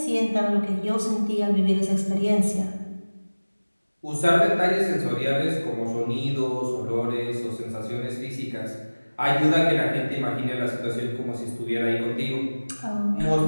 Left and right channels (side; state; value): both; inverted; correlation -1.00